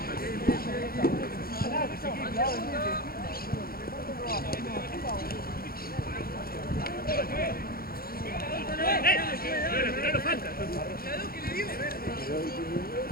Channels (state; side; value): late; right; 0.43 ms